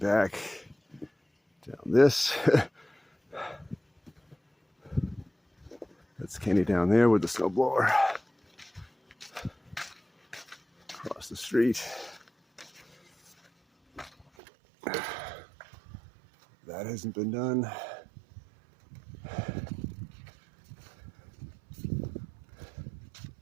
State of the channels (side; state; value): left; drops out; at 14.2 s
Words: down this. That's Kenny down there with the snowblower. Across the street. That hasn't been done.